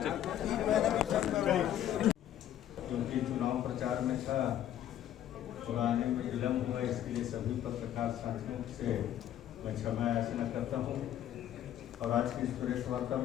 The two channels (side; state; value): right; quieter; 11.4 dB